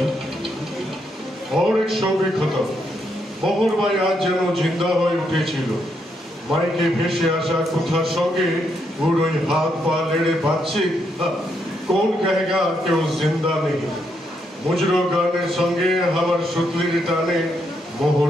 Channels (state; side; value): normal; both; correlation 0.78